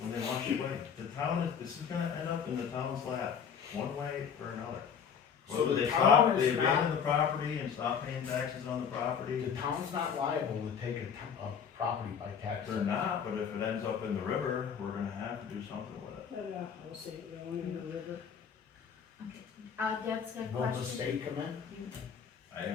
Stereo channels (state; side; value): quieter; right; 7.2 dB